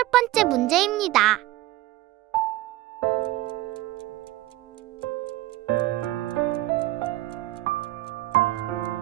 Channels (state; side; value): quieter; left; 16.7 dB